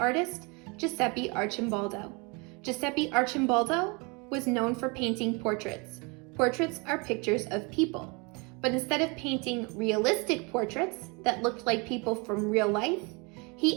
artist Giuseppe Arcimboldo. Giuseppe Arcimboldo was known for painting portraits. Portraits are pictures of people, but instead of painting realistic portraits that looked like people from real life,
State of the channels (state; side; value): quieter; left; 30.2 dB